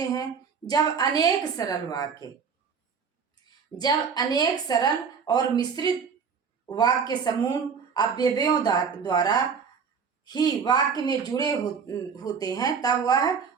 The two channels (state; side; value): quieter; left; 6.2 dB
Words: जब अनेक सरल और मिश्रित वाक्य समूह अवयवों द्वारा ही वाक्य में जुड़े होते हैं तब वह